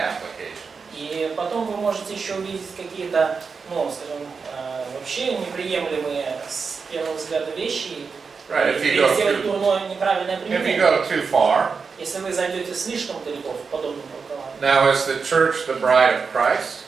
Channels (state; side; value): quieter; left; 5.2 dB